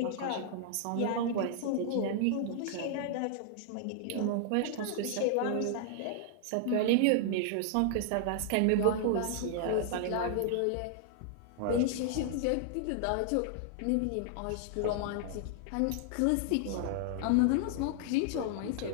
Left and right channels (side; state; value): both; different; correlation -0.01